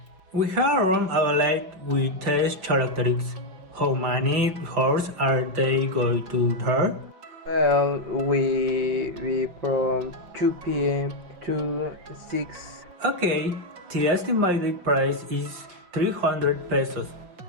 We have a room available with test characteristics. How many hours are they going to there? Well, we from 2 p.m. to 6. Okay, the estimated price is 300 pesos.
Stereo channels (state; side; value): late; left; 5.6 ms